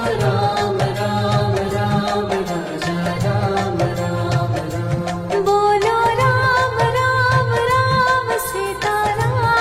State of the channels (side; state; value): both; identical; correlation 1.00